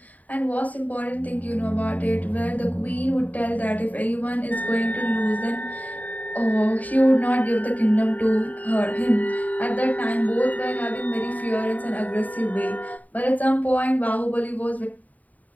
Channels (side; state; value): right; late; 0.074 ms